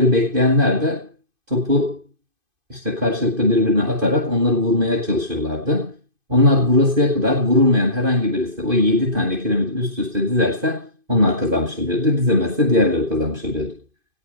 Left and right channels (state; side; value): late; left; 2.5 ms